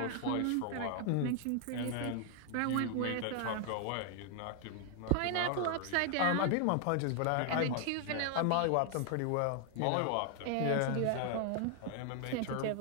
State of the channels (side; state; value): both; different; correlation 0.00